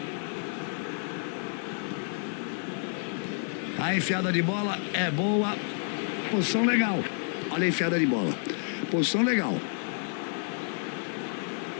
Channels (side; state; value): right; silent; 58 dB below the other